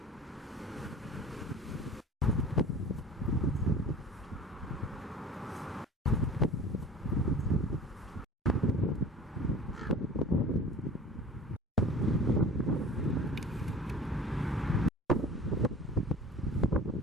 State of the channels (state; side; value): normal; both; correlation 0.41